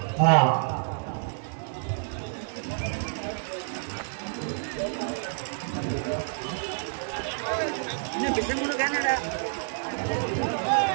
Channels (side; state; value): left; silent; digital silence